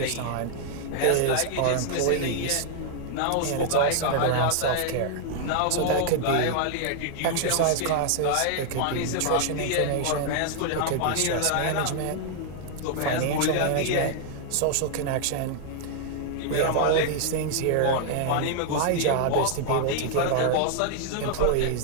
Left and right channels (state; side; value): different; both; correlation -0.01